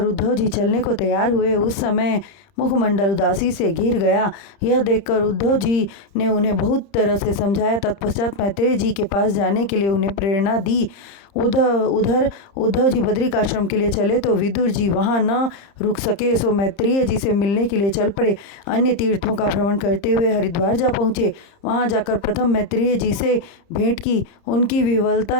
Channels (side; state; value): right; late; 30 ms